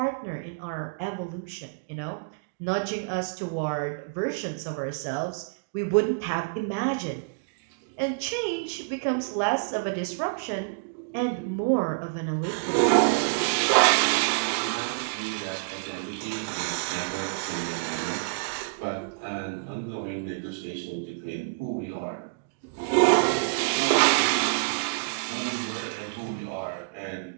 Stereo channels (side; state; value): left; quieter; 34.9 dB